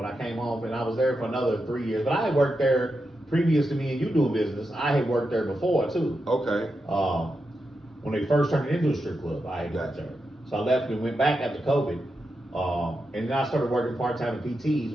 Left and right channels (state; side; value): normal; both; correlation 0.87